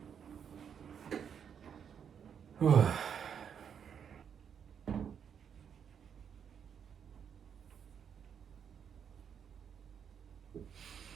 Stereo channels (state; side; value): quieter; left; 7.7 dB